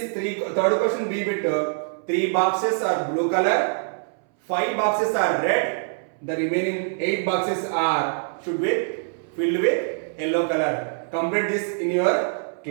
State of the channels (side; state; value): left; silent; 62 dB below the other